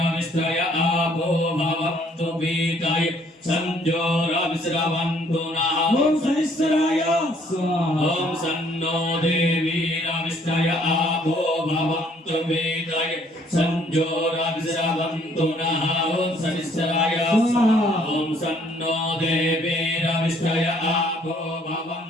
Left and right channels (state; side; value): normal; both; correlation 0.63